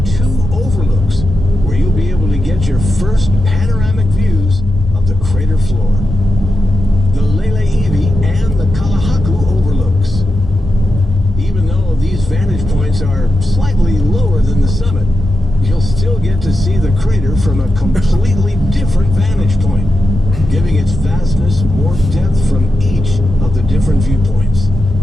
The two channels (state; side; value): normal; both; correlation 0.89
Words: 2 overlooks where you'll be able to get your first panoramic views of the crater floor. The Lele'ivi and the Kalahaku overlooks. Even though these vantage points are slightly lower than the summit, you'll still still get to see the crater from a completely different vantage point, giving its vastness more depth from each of the different viewpoints.